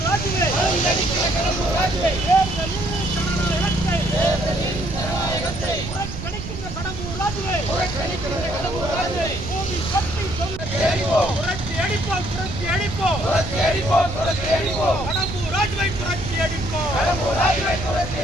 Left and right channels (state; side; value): noise; right; rumble, 8 dB below the sound